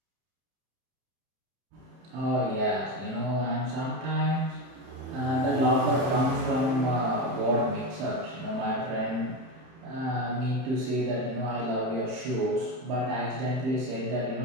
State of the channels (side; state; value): left; late; 31 ms